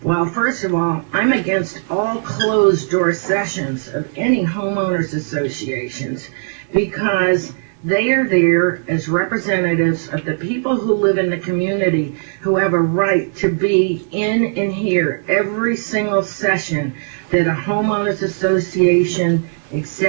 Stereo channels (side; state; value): left; silent; 67 dB below the other